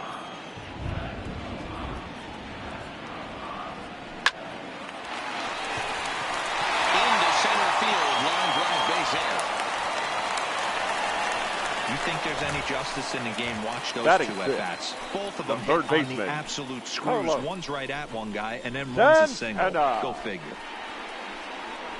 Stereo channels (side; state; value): both; identical; correlation 1.00